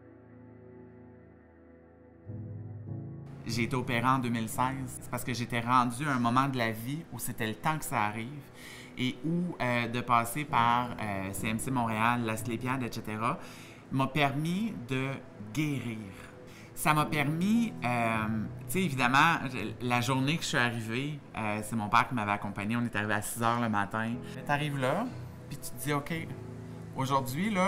J'ai été opérée en 2016. C'est parce que j'étais rendue à un moment de la vie où c'était le temps que ça arrive et où de passer par CMC Montréal, la Asclépiade, etc., m'a permis de guérir. Ça m'a permis, tu sais, évidemment, la journée que je suis arrivée, c'est mon père qui m'avait accompagné. On est arrivé à 6 h le matin. Tu arrives là, puis tu te dis, OK, aujourd'hui,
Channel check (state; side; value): identical; both; correlation 1.00